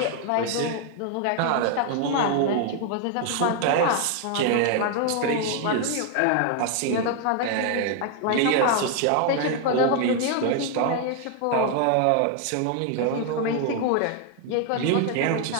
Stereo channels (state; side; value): different; both; correlation 0.00